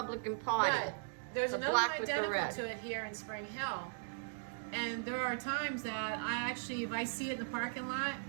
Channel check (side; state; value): left; silent; digital silence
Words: Party. But there's The another black one with the identical red. to it here in Spring Hill. And there are times that I actually, if I see it in the parking lot,